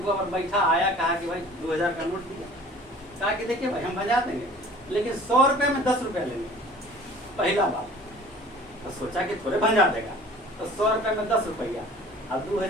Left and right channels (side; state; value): both; normal; correlation 0.47